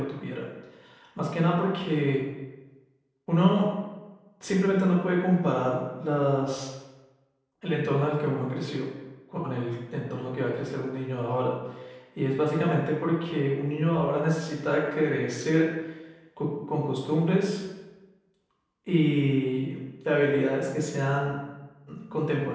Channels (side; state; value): both; identical; correlation 1.00